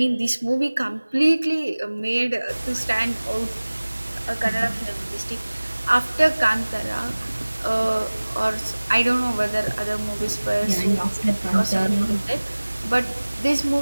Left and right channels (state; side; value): inverted; both; correlation -1.00